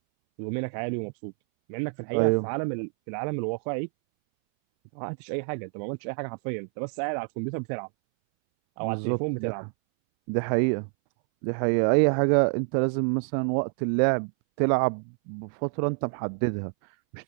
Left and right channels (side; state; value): left; silent; 59 dB below the other